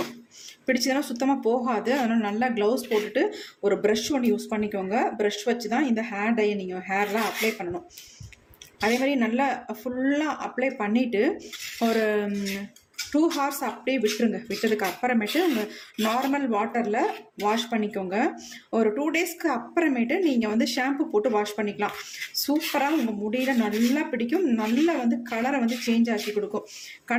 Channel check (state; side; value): identical; both; correlation 1.00